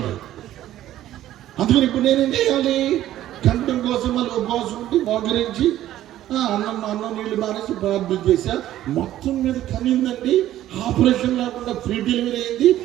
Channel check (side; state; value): left; quieter; 13.2 dB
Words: అందుకని ఇప్పుడు నేనేం చేయాలి, కంఠం కోసం మళ్ళీ ఉపవాసం ఉండి మోకరించి అన్నం నీళ్లు మానేసి ప్రార్థన చేశా. మొత్తం మీద కనిందండి, ఆపరేషన్ లేకుండా ఫ్రీ డెలివరీ అయింది.